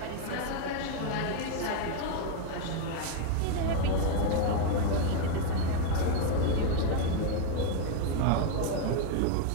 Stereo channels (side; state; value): both; different; correlation 0.01